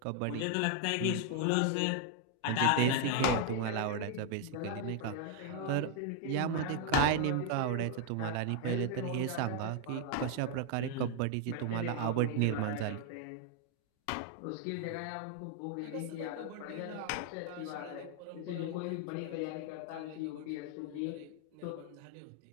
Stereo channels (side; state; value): both; different; correlation 0.00